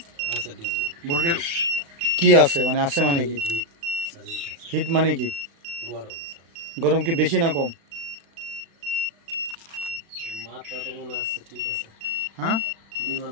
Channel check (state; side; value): late; left; 36 ms